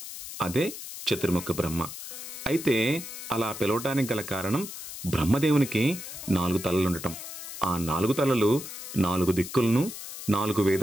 అదే చతుర్ముఖ బ్రహ్మ. అయితే అలా పిలవటానికి గల కారణం బ్రహ్మదేవునికి 4 తలలుండటం. ఆ 4 తలలు 4 దిక్కులను 4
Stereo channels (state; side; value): noise; left; hiss, 10 dB below the sound